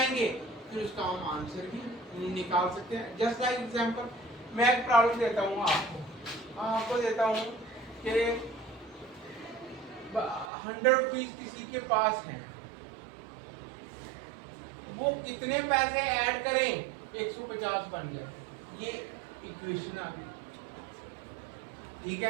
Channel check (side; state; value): left; drops out; at 10.5 s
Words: फिर उसका हम आंसर भी निकाल सकते हैं। जस्ट लाइक एग्जांपल, मैं एक प्रॉब्लम देता हूँ आपको देता हूँ कि 100 रुपीज किसी के पास हैं, वो कितने पैसे ऐड करें 150 बन जाए, ये इक्वेशन आ गई, ठीक